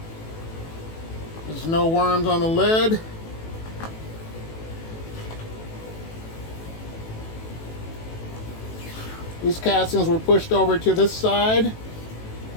There's no worms on the lid. These castings were pushed over to this side,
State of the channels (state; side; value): late; right; 18 ms